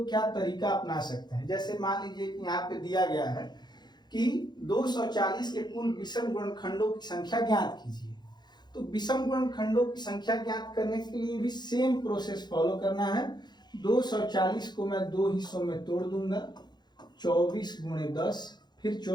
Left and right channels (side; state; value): right; late; 0.21 ms